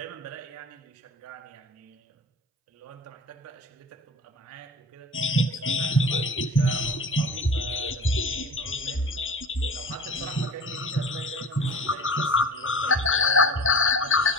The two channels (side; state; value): both; normal; correlation 0.37